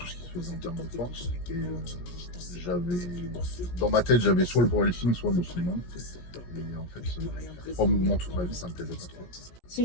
ce qui se faisait en termes de force et dans ma tête j'avais soit le powerlifting soit le muscleman. Et en fait, 3 mouvements toute ma vie ça me plaisait pas trop. C'est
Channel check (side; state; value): right; late; 17 ms